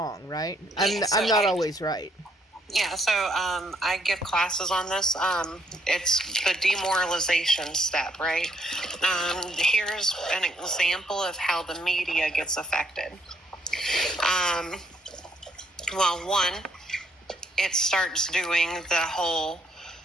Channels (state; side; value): normal; both; correlation 0.70